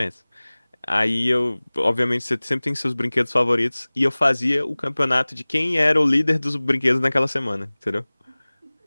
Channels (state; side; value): inverted; both; correlation -1.00